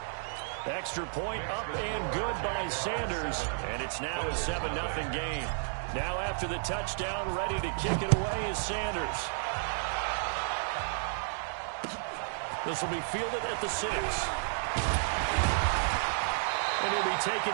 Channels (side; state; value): left; silent; digital silence